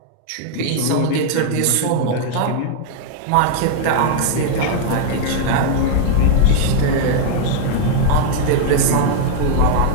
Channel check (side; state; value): both; different; correlation 0.00